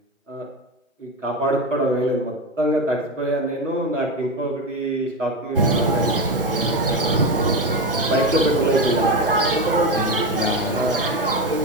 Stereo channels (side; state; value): both; normal; correlation 0.17